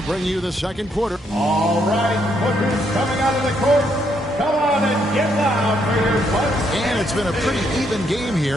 bring you the second quarter. All right, Booker's coming out of the court. Come on and get loud for your Bucks. And it's been a pretty even game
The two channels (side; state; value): both; normal; correlation 0.74